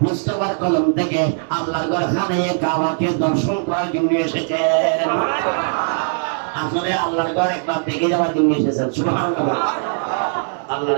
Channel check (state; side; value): silent; left; 66 dB below the other